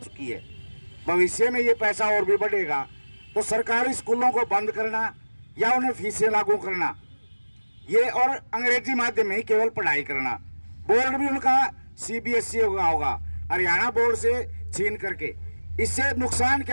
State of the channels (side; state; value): both; inverted; correlation -1.00